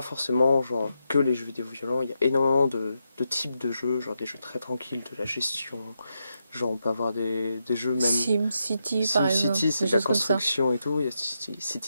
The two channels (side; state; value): both; inverted; correlation -0.84